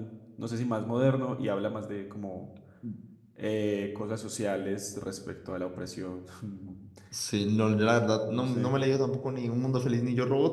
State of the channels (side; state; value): both; identical; correlation 1.00